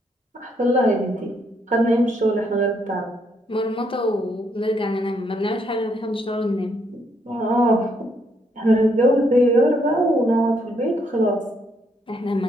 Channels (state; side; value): normal; both; correlation 0.73